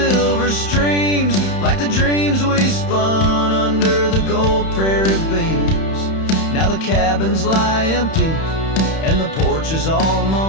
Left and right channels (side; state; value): right; late; 31 ms